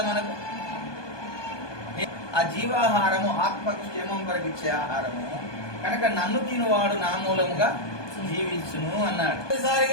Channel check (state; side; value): late; right; 1.2 ms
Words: మనకు. ఆ జీవాహారము ఆత్మకు క్షేమం కొరకు ఇచ్చే ఆహారము కనుక నన్ను తినువాడు నా మూలముగా జీవించును అన్నాడు.